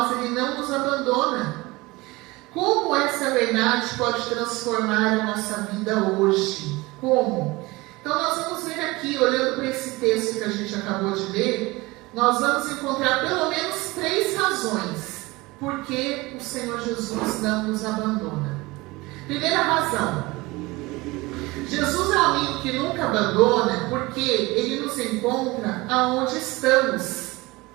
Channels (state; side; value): quieter; left; 22.0 dB